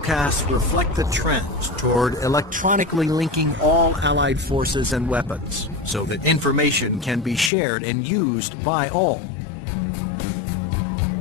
reflect the trends toward electronically linking all Allied forces and weapons, so that information can be shared and used by all.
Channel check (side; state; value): right; drops out; at 7.5 s